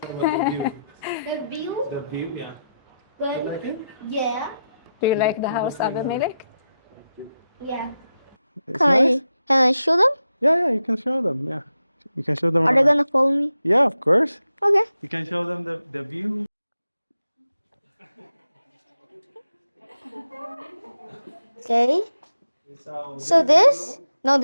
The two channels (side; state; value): both; inverted; correlation -0.88